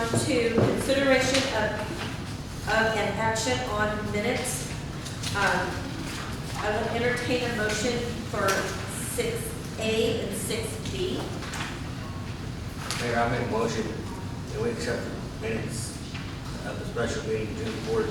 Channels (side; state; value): both; identical; correlation 1.00